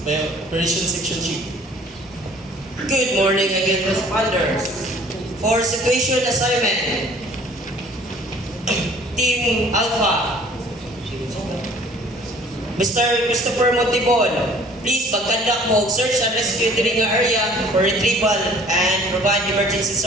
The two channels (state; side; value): normal; both; correlation 0.53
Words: by Operations Section Chief. Good morning again, responders. For situation assignment, Team Alpha, Mr. Christopher Montibon, please mag-conduct mo search and rescue diri nga area for retrieval and provide emergency